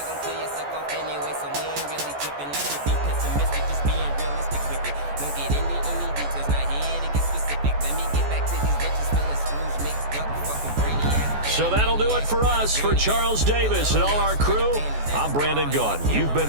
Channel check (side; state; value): left; late; 14 ms